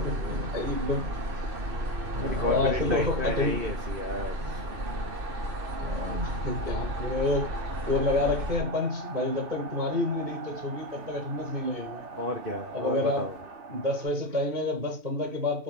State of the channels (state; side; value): late; left; 2.7 ms